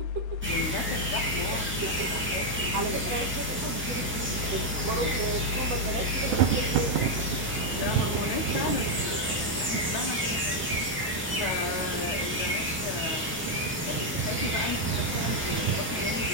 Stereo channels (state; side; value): normal; both; correlation 0.01